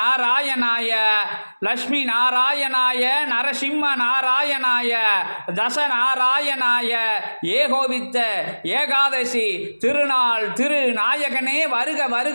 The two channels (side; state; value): both; inverted; correlation -1.00